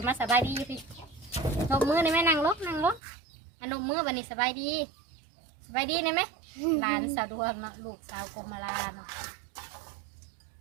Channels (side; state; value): left; drops out; at 3.0 s